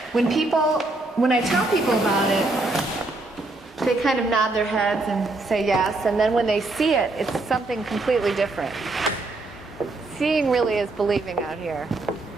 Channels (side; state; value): left; quieter; 3.0 dB